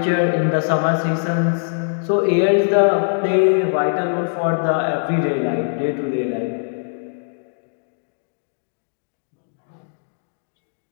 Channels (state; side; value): silent; right; digital silence